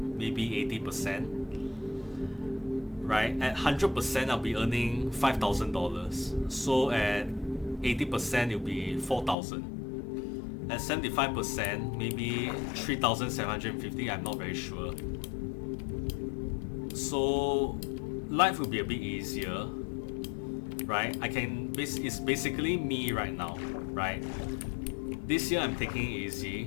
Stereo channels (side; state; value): right; drops out; at 9.3 s